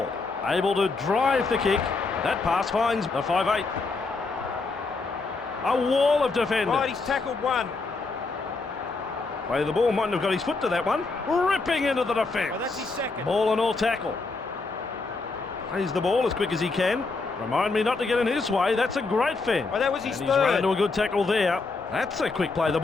Able to drive the kick. That pass finds the 5'8". A wall of defenders. Right, he's tackled one. Play the ball, mightn't have got his foot to that one. Ripping into the defence. Well, that's his second. Ball and all tackle. Plays the ball as quick as he can. Remind me not to get in his way. That's a great fend. Well, that was his and third. He's run into a good tackle there. That's a quick play the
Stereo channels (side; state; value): right; quieter; 3.9 dB